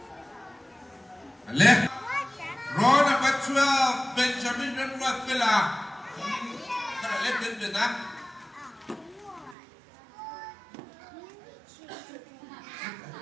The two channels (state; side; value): drops out; left; at 9.6 s